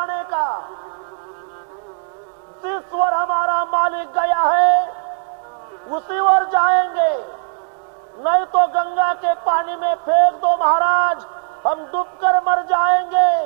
का. जिस पर हमारा मालिक गया है उसी पर जाएंगे, नहीं तो गंगा के पानी में फेंक दो महाराज, हम डूबकर मर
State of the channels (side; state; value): left; silent; digital silence